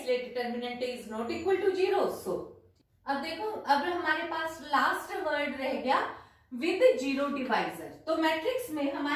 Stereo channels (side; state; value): both; identical; correlation 1.00